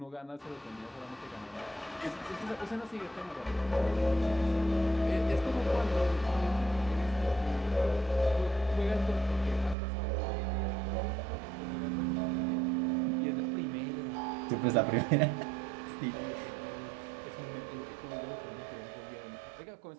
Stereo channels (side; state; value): left; drops out; at 9.8 s